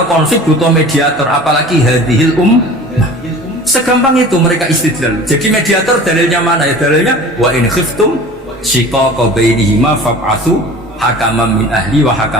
konflik butuh mediator, apalagi hadhil segampang itu mereka istidlal. Jadi mediator dalilnya mana ya? Dalilnya wa in khiftum shiqaqa bainihima fab'atsu hakaman min ahli wa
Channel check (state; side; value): normal; both; correlation 0.41